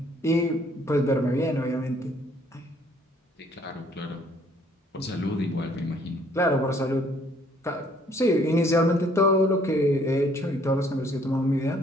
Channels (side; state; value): both; normal; correlation 0.62